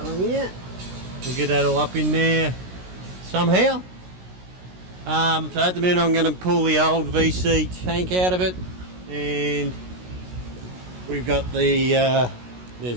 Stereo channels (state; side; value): late; left; 16 ms